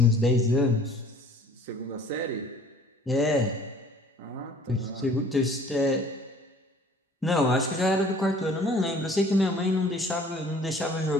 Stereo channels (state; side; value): normal; both; correlation 0.52